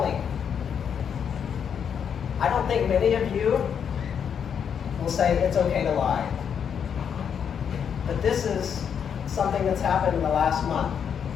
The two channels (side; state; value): right; quieter; 7.7 dB